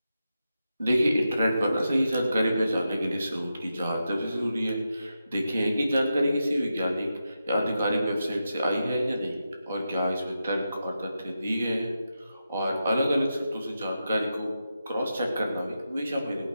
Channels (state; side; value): inverted; both; correlation -0.88